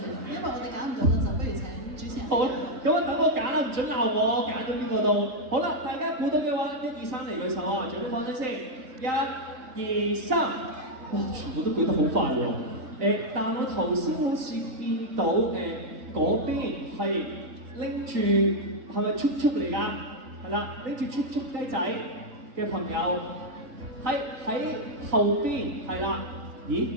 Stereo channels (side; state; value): left; late; 3.9 ms